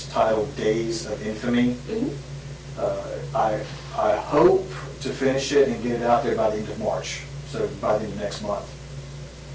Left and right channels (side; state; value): both; identical; correlation 1.00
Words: titled Days of Infamy, I hope to finish it and get it out there by the end of March, so by the end of next month.